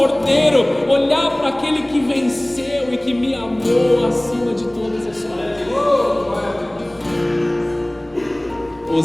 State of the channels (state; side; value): noise; right; rumble, 28 dB below the sound